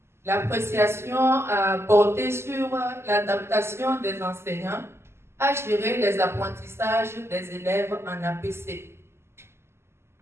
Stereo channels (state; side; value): late; left; 0.12 ms